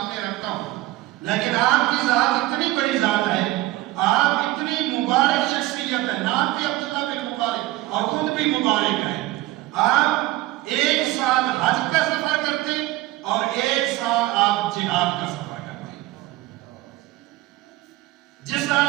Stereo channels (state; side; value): quieter; left; 17.4 dB